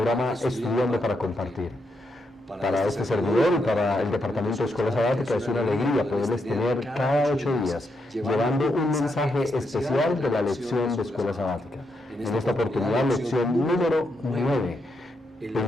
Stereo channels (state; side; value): normal; both; correlation 0.81